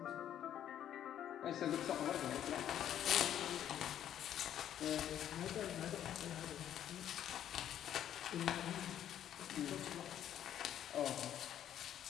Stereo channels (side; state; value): right; quieter; 10.6 dB